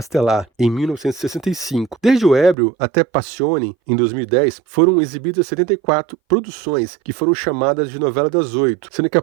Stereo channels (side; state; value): left; drops out; at 2.6 s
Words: em 1965. Desde O Ébrio até Passione, em 2010, foram exibidas 74 produções que foram chamadas de novela das 8, sendo que a